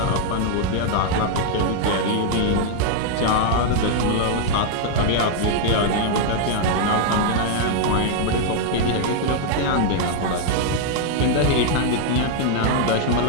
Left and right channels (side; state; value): both; different; correlation 0.00